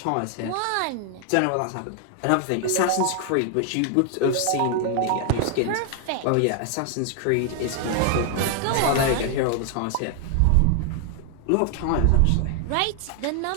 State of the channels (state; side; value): different; both; correlation 0.00